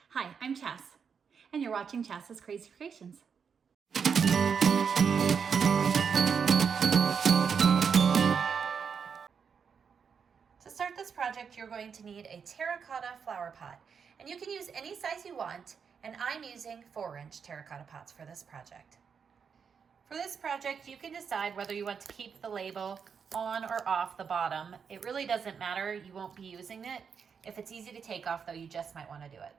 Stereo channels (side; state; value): left; quieter; 6.5 dB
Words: Hi, I'm Chas, and you're watching Chas's Crazy Creations. To start this project, you're going to need a terracotta flower pot, and you can use any size you want, and I'm using 4-inch terracotta pots for this project. For this project, you can decide whether you want to keep the label on or off the bottom. It really doesn't matter, you won't be using it. If it's easy to take off though, you just might want to do it.